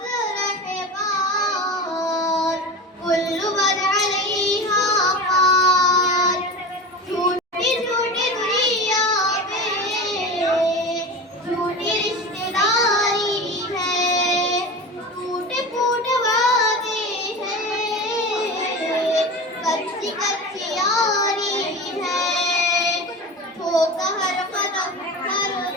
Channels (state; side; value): normal; both; correlation 0.29